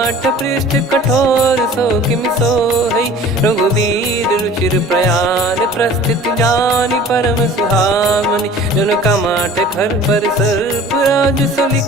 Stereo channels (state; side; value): normal; both; correlation 0.45